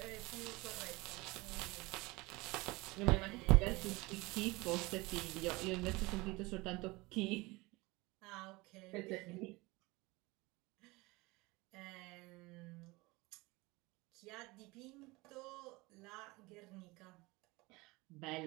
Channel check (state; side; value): quieter; left; 23.0 dB